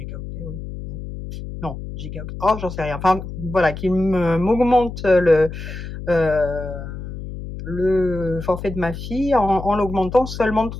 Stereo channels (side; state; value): left; noise; hum, 9 dB below the sound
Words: oui, non, gigaoctets, oh, j'en sais rien. Enfin, voilà, qui m'augmente heu, le forfait de ma fille en l'augmentant seulement de